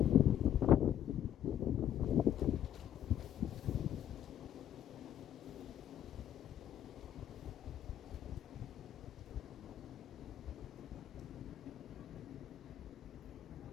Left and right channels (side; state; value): right; quieter; 10.6 dB